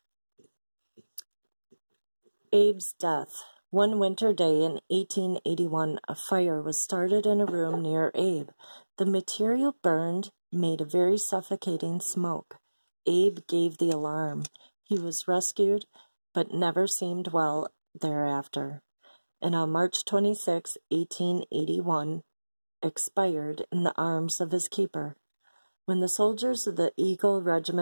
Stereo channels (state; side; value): inverted; both; correlation -1.00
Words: Abe's death. One winter day in 1881, a fire was started in a room near Abe. The material burned, made a very suffocating smoke. Abe gave the alarm. He was rescued, but never seemed well thereafter. And on March 26, 1881, expired in the arms of his keeper. When the soldiers of the Eagle